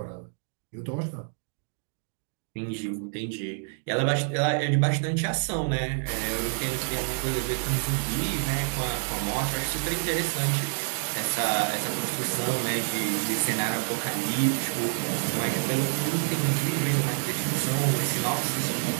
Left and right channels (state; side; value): silent; left; digital silence